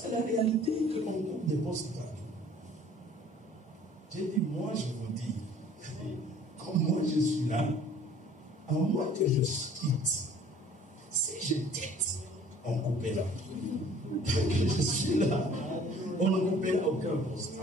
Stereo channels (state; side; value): normal; both; correlation 0.52